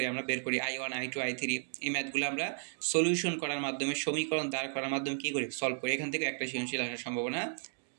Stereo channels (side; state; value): left; silent; digital silence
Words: আমরা বের করি I1, I2, I3, এই ম্যাথগুলো আমরা সলিউশন করার মাধ্যমে, সমীকরণ দাঁড় করার মাধ্যমে কী করি, সলভ করি। এখান থেকে একটা সৃজনশীল আসার সম্ভাবনা